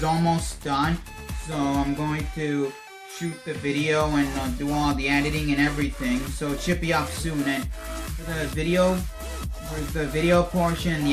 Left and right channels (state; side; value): identical; both; correlation 1.00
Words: almost done, so I'm going to shoot the video and do all the editing and everything. So it should be up soon. And for the video portion and the